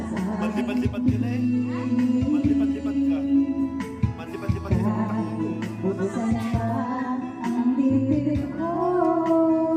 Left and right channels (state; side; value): identical; both; correlation 1.00